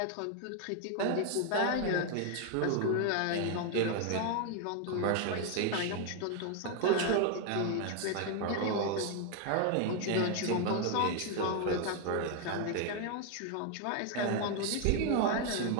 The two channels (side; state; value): both; different; correlation 0.00